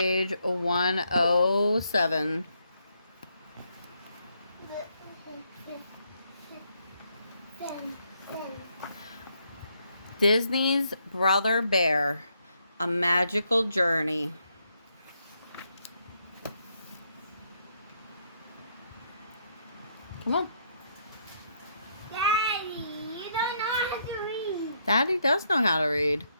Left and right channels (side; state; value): both; inverted; correlation -0.75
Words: 107. Disney's Brother Bear, A Magical Journey. Come on. Daddy, you don't know how to read. Daddy does know how to read.